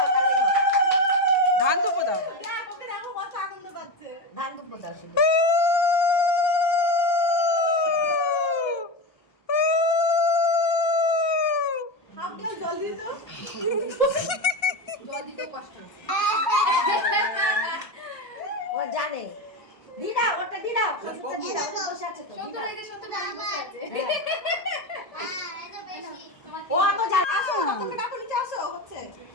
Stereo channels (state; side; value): late; right; 1.3 ms